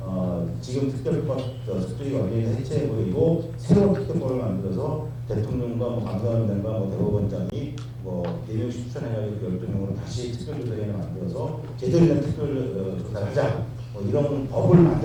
지금 특별법 특조위가 완전히 해체해버리고 새로운 특별법을 만들어서 대통령과 감사원장과 대법원장이 대명씩 추천해가지고 12명으로 다시 특별조사위원회 만들어서 제대로 된 특별조사를 하자, 이런 법을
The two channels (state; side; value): identical; both; correlation 1.00